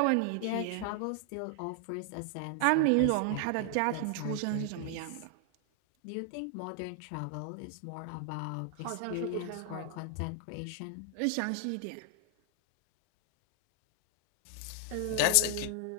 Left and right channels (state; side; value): different; both; correlation 0.00